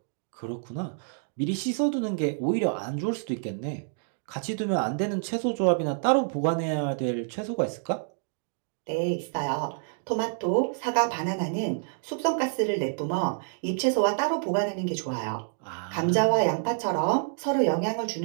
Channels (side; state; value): left; silent; digital silence